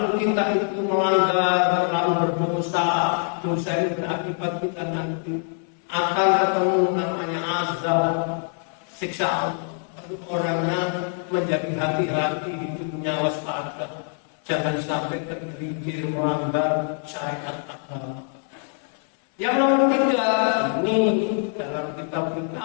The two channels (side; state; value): right; silent; 56 dB below the other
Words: kita itu melanggar, lalu berdosa, dosa ini berakibat kita nanti akan ketemu namanya azab, siksa Allah. Lalu orangnya menjadi hati-hati, hidupnya waspada, jangan sampai tergelincir melanggar syariat agama. Yang nomor 3 ini dalam kitab kita